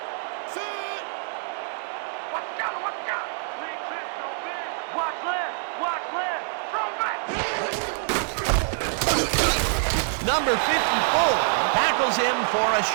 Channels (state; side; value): silent; left; digital silence